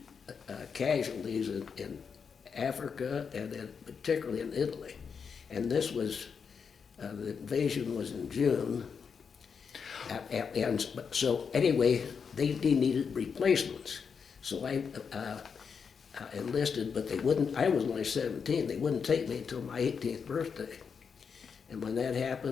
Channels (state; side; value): quieter; right; 6.2 dB